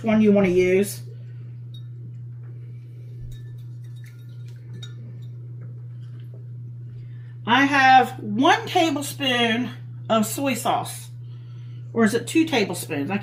one you want to use. I have 1 tablespoon of soy sauce. Or is it 2 tablespoons? I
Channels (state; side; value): identical; both; correlation 1.00